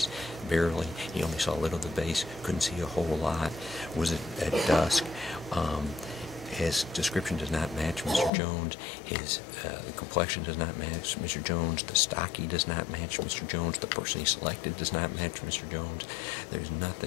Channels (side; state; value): right; drops out; at 8.3 s